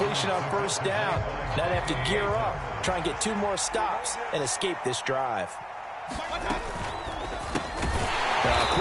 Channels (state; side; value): identical; both; correlation 1.00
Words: on first down. Now they have to gear up, try and get 2 more stops, and escape this drive. A